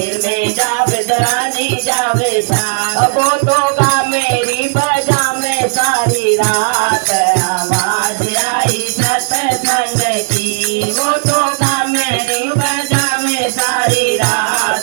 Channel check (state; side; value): silent; left; digital silence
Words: में जावे रानी जावे साथ, वो तो गा मेरी बजा में सारी रात। आवाज आई सत्संग की, वो तो गा मेरी बजा में सारी